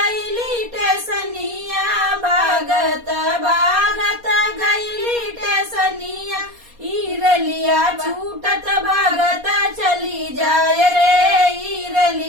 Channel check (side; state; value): left; late; 4.2 ms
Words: टेसनिया, भागत भागत गईली टेसनिया। ईरलिया छूटत भागत चली जाय रे,